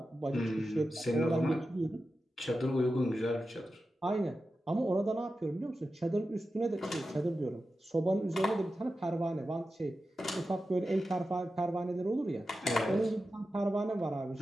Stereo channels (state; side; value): normal; both; correlation 0.92